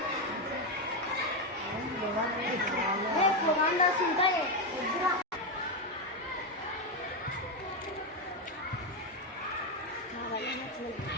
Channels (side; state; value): both; normal; correlation 0.08